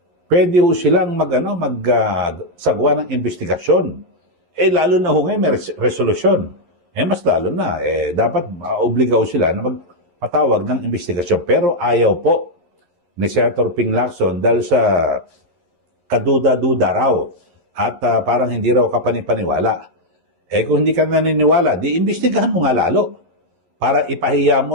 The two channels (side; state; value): left; late; 11 ms